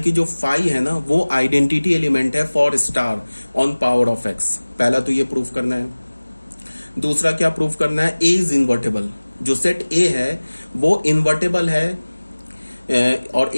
जो फाई है ना वो आइडेंटिटी एलिमेंट है for star on power of x. पहला तो ये प्रूफ करना है। दूसरा क्या प्रूफ करना है, ए इज इन्वर्टेबल। जो सेट ए है वो इन्वर्टेबल है, और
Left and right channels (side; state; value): both; inverted; correlation -1.00